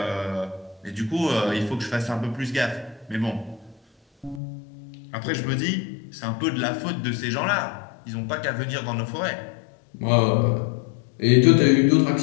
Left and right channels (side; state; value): right; drops out; at 4.4 s